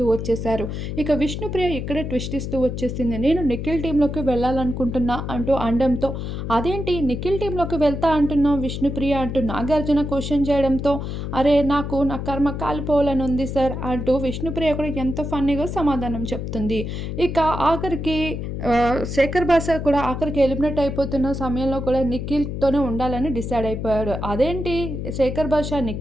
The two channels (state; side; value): noise; left; hum, 5 dB below the sound